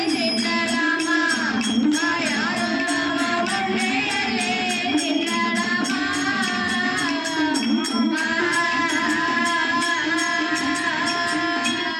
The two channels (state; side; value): identical; both; correlation 1.00